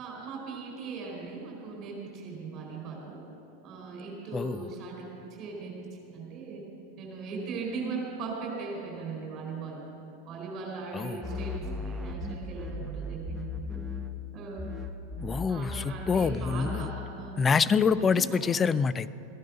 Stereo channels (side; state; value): right; quieter; 3.4 dB